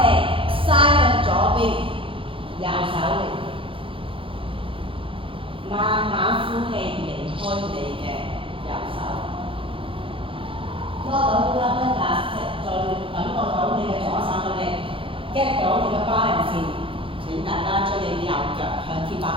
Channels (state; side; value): late; left; 0.25 ms